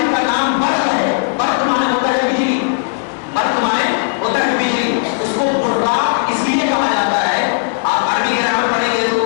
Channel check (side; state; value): right; silent; digital silence